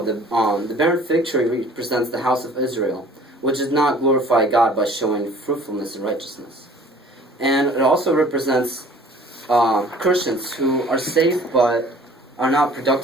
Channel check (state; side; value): normal; both; correlation 0.51